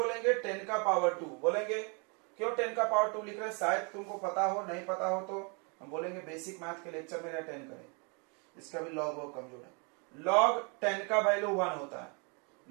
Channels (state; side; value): quieter; left; 34.3 dB